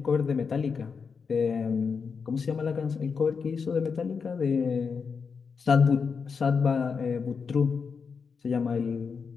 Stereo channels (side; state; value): right; quieter; 5.6 dB